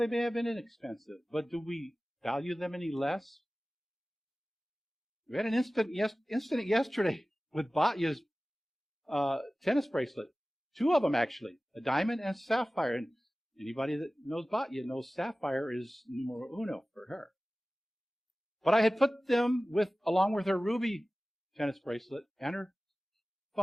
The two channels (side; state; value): both; normal; correlation 0.97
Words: may have been inexpensive, but do we value them any less? We had an incident yesterday with Batya's tennis bracelet. Two of them, actually. A diamond and a sapphire. And anybody that knows Batya knows sapphire is numero uno for her. But I had put them along with her ruby tennis bracelet and her